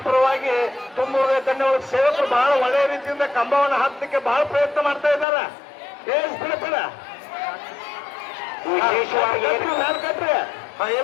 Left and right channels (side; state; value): right; drops out; at 5.2 s